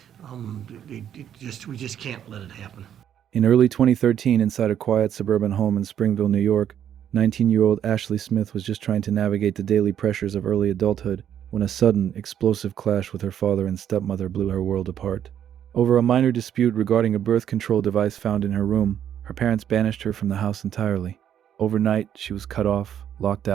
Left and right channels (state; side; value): quieter; left; 9.7 dB